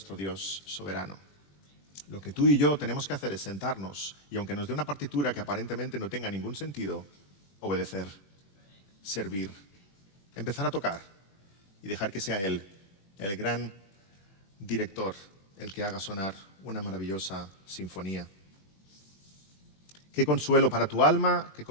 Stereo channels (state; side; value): late; right; 21 ms